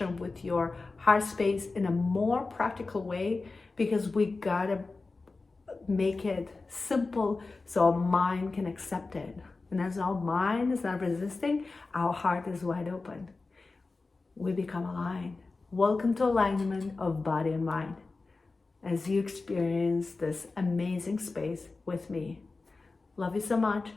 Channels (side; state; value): right; quieter; 3.7 dB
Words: with your heart space in a more practical way, because we gotta make it simple so our mind can accept it. And as our mind is not resisting, our heart is wide open. We become aligned. Welcome to alignment of body and mind as you experience this amazing space with me. Love you so much